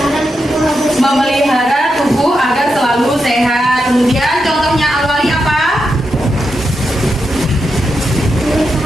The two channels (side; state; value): both; normal; correlation 0.86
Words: Memelihara tubuh agar selalu sehat. Kemudian contohnya Al-Wali apa?